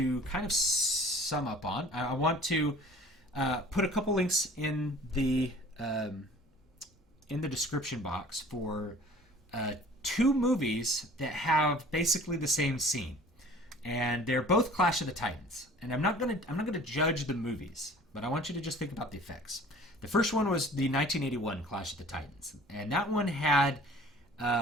kind of sum up on, I want to put a couple links in the description box for two movies that have basically the same scene, and they're both Clash of the Titans. And I'm not gonna judge the movies, but I want you to just think about the effects. The first one was the 1981 Clash of the Titans, and that one had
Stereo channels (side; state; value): both; normal; correlation 0.48